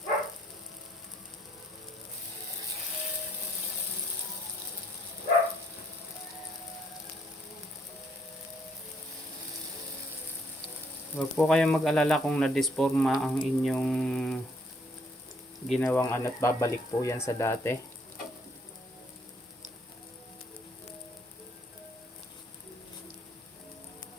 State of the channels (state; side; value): normal; both; correlation 0.67